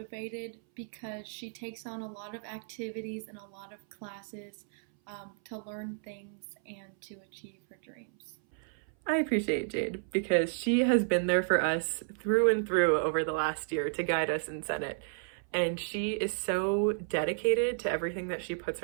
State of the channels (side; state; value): left; silent; 56 dB below the other